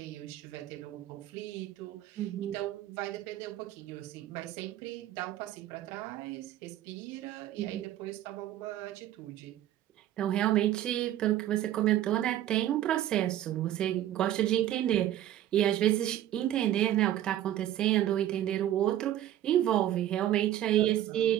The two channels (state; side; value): quieter; left; 12.7 dB